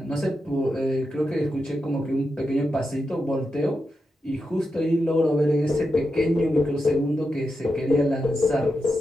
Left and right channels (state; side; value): normal; both; correlation 0.88